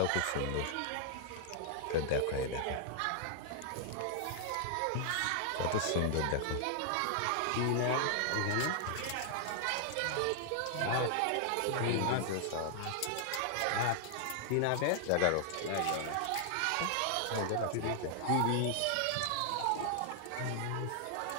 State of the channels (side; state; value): both; different; correlation 0.00